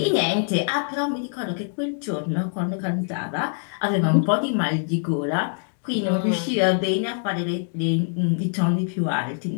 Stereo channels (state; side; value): silent; right; digital silence